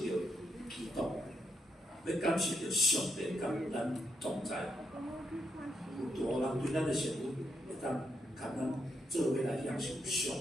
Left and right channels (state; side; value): normal; both; correlation 0.80